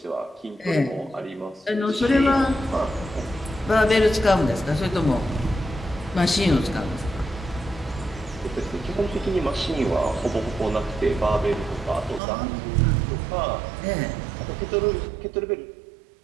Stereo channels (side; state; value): left; drops out; at 12.2 s